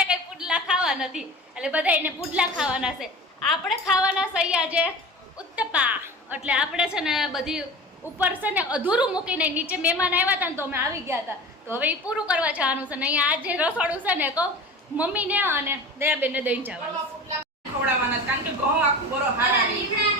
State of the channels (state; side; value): normal; both; correlation 0.35